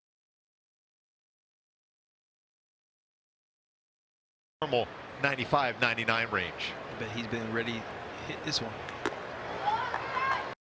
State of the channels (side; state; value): both; identical; correlation 1.00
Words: Normal 95-99 range. But he's been ready to hit this one.